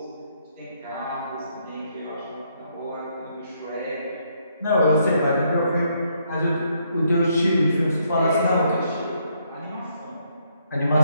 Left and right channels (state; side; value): inverted; both; correlation -0.72